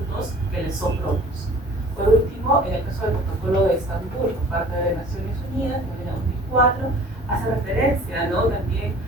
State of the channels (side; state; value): both; normal; correlation 0.48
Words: que le son propios. Por último, en el caso del protocolo de Estambul por parte de las Naciones Unidas en el año 2004, hace referencia, ¿no? También